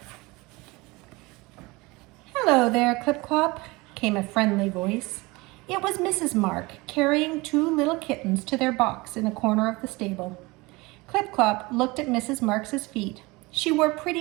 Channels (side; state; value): left; quieter; 23.3 dB